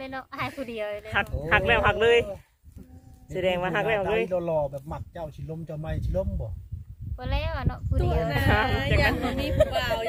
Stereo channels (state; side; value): identical; both; correlation 1.00